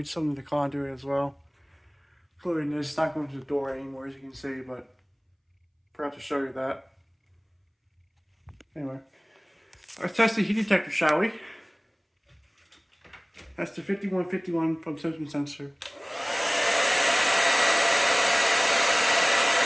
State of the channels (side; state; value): both; identical; correlation 1.00